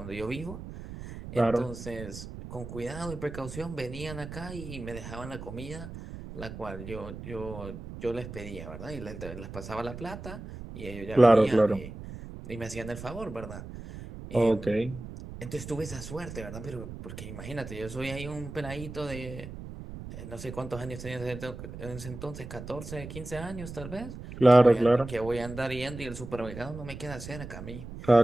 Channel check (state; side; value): noise; right; rumble, 11 dB below the sound